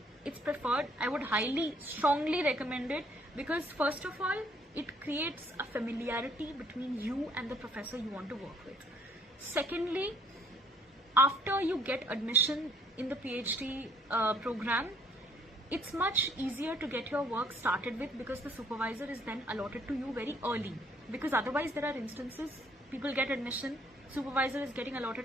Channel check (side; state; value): both; normal; correlation 0.64